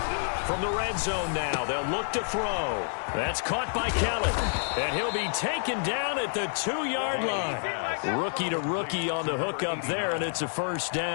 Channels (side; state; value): right; silent; digital silence